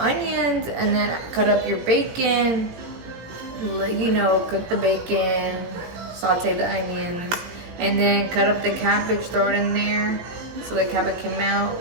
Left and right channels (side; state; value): left; late; 18 ms